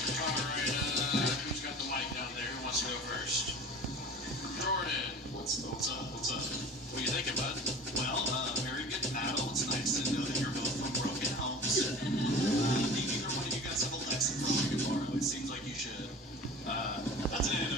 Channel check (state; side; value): normal; both; correlation 0.40